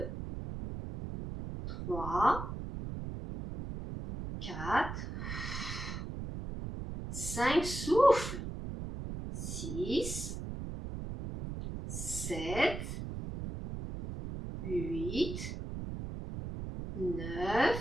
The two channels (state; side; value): noise; right; rumble, 6 dB below the sound